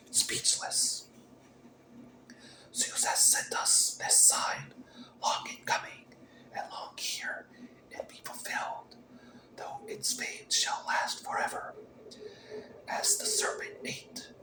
speechless? Zeus has sent us this sign, long in coming, and long here it be fulfilled, though its fame shall last forever. As the serpent ate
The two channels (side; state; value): both; identical; correlation 1.00